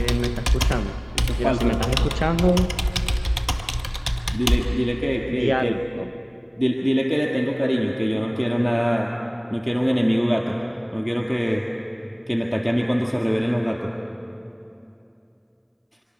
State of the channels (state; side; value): identical; both; correlation 1.00